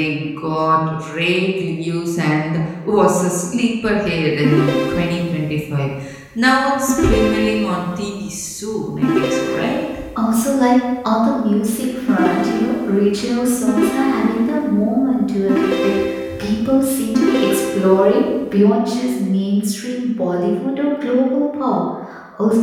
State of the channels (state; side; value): identical; both; correlation 1.00